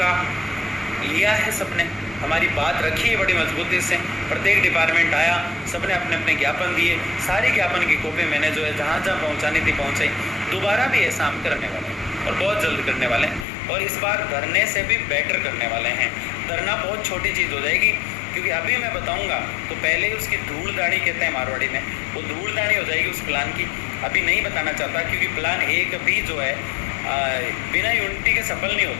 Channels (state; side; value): drops out; right; at 13.5 s